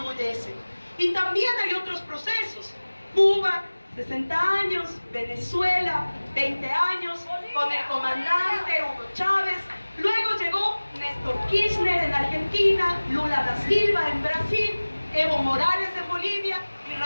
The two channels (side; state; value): both; inverted; correlation -1.00